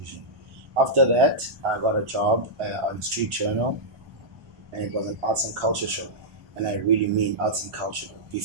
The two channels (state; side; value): late; left; 1.4 ms